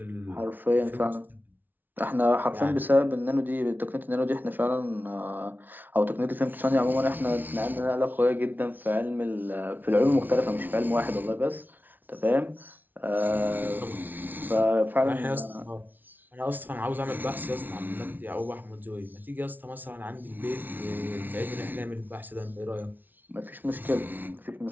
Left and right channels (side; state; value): left; late; 0.086 ms